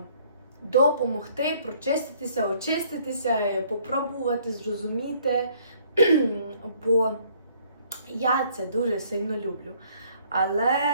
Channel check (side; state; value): both; inverted; correlation -0.62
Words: допомогти прочиститися, очиститися, попробувати, зрозуміти, бо я це дуже сильно люблю.